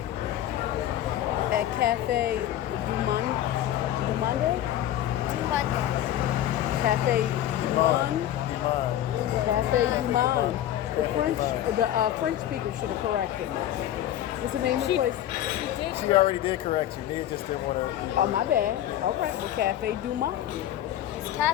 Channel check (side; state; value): right; quieter; 12.2 dB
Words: At Cafe Dumont? Monday. Cafe Dumont? Cafe Dumont. The French speaker should have corrected me. What's the name of the place? She already did correct you. Nia just didn't want to. Oh, my bad. All right. Well, Cafe Dumont. It's